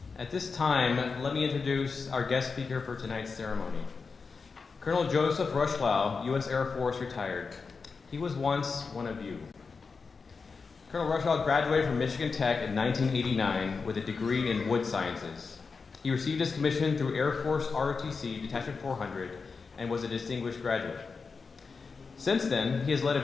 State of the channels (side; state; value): right; quieter; 4.8 dB